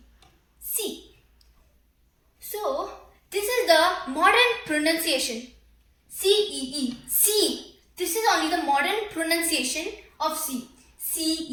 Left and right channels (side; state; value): both; identical; correlation 1.00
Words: C. So this is the modern pronunciation. C-E-E. C. This is only the modern pronunciation of C.